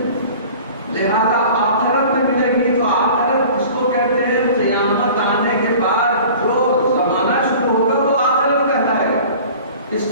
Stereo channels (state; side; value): inverted; both; correlation -0.43